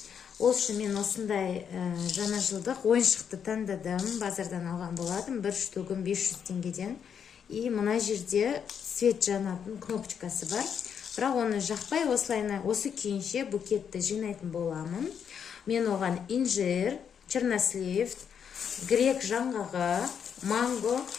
Ол үшін мен осындай жаңа жылдық ойыншықты таңдадым. Базардан алған болатым. Бір штугін 500 теңгеден. И мына жерде свет жанатын кнопочкасы бар. Бірақ оны жақпай осы күйінше букетті жинайтын боламын. Мен оған инжир, чернослив, грек жаңғағы, манго,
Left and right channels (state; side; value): quieter; right; 7.6 dB